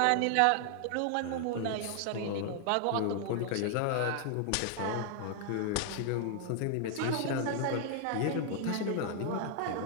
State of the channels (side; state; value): both; different; correlation 0.00